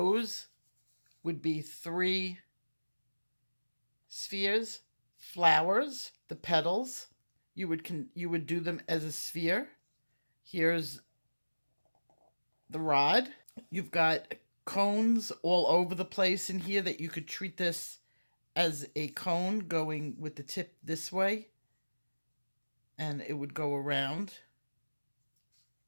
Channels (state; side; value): inverted; both; correlation -1.00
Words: would be 3 spheres. Flowers, the petals, you would do them as a sphere. Here's the rod. You've got cones all over the place in here that you could treat this as a cone going with the tip this way, and it would go around.